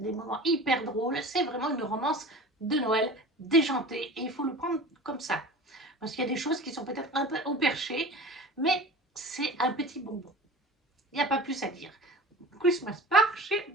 moments hyper drôles. C'est vraiment une romance de Noël déjantée et il faut le prendre comme ça. Parce qu'il y a des choses qui sont peut-être un peu au perché, mais c'est un petit bonbon. Il n'y a pas plus à dire. Christmas Park chez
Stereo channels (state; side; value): normal; both; correlation 0.36